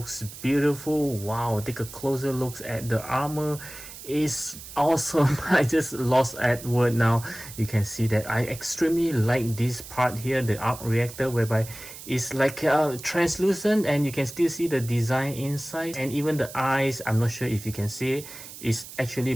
beautiful. Wow, take a closer look at the armor. Is awesome. I just lost at word now. You can see that I extremely like this part here, the arc reactor, whereby it's like translucent and you can still see the design inside, and even the eyes, I'm not sure if you can see it, is actually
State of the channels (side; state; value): right; noise; hiss, 14 dB below the sound